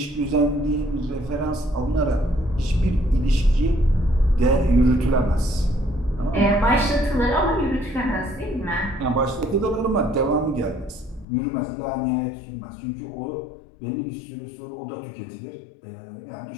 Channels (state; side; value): drops out; right; at 11.2 s